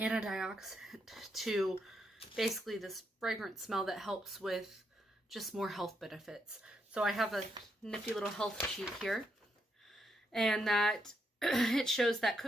to basically this fragrant smell that helps with just more health benefits. So I have a nifty little health sheet here, and that it shows that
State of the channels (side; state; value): both; normal; correlation 0.79